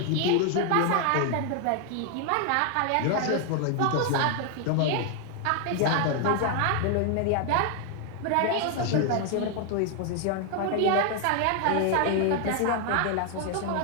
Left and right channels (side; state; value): both; different; correlation 0.00